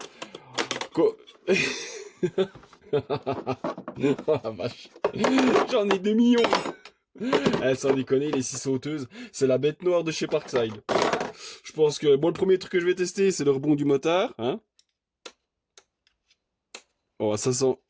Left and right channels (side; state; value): both; identical; correlation 1.00